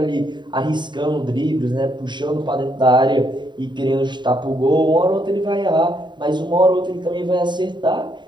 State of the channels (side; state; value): left; late; 0.22 ms